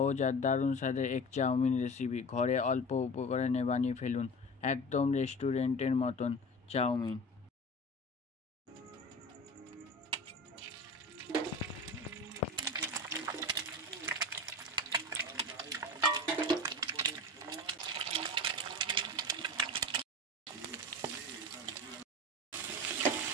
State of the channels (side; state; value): both; normal; correlation 0.34